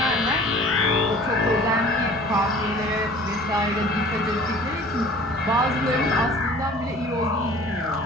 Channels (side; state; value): both; normal; correlation 0.48